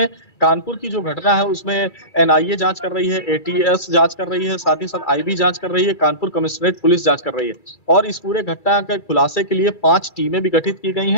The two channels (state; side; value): late; right; 1.9 ms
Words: कानपुर की जो घटना है उसमें एनआईए जांच कर रही है, एटीएस जांच कर रही है, साथ ही साथ आईबी जांच कर रही है, कानपुर कमिश्नरेट पुलिस जांच कर रही है और इस पूरे घटना के खुलासे के लिए 5 टीमें भी गठित की गई